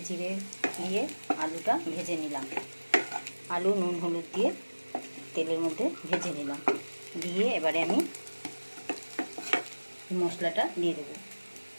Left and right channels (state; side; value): inverted; both; correlation -1.00